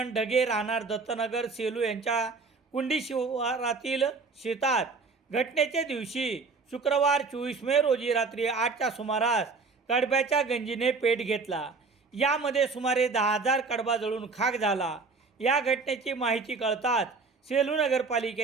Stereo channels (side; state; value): left; quieter; 4.3 dB